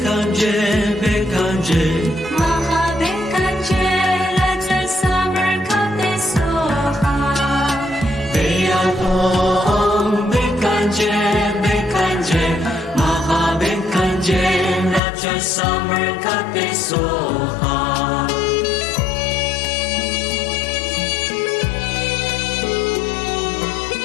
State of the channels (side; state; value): right; drops out; at 15.0 s